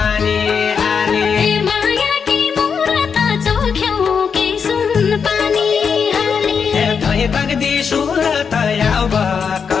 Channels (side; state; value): right; quieter; 6.3 dB